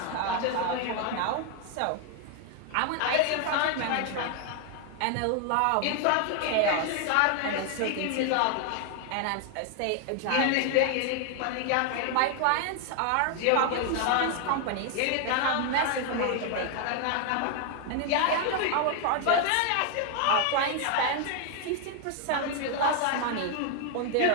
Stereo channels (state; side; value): different; both; correlation 0.00